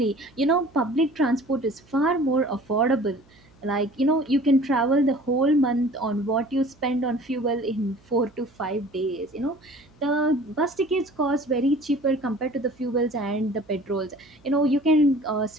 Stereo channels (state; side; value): noise; right; hum, 29 dB below the sound